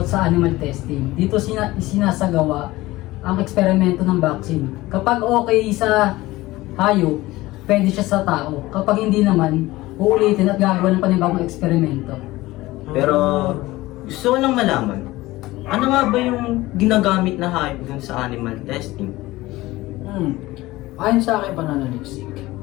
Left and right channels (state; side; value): quieter; right; 18.6 dB